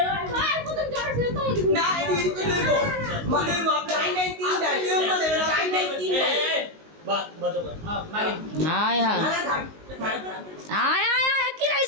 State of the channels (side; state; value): left; late; 19 ms